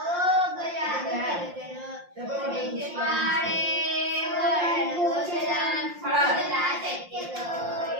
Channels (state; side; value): late; left; 5.7 ms